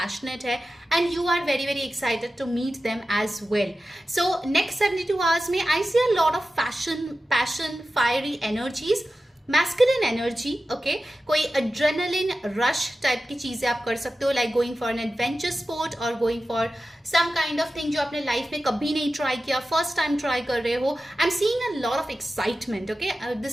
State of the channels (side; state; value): both; normal; correlation 0.93